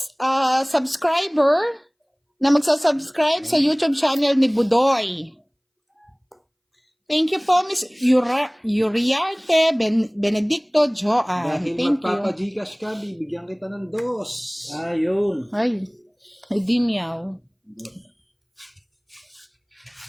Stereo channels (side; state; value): both; identical; correlation 1.00